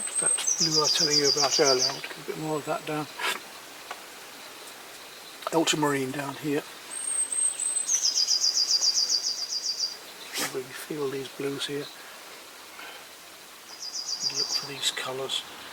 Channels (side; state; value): both; identical; correlation 1.00